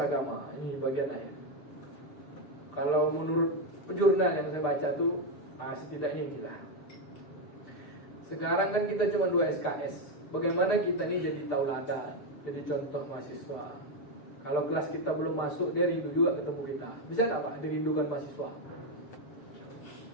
Ini bagian akhir. Kalau menurut jurnal yang saya baca tuh setidaknya inilah. Sekarang kan kita cuma 2 SKS. Bagaimana kita ini jadi tauladan, jadi contoh mahasiswa. Kalau kelas kita belum masuk, dia rindu juga ketemu kita. Bisa nggak Pak dirindukan mahasiswa?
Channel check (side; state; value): right; late; 6.8 ms